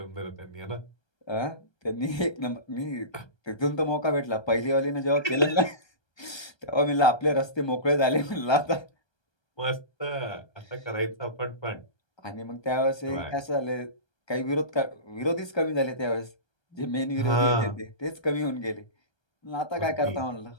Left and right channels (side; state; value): right; late; 1.3 ms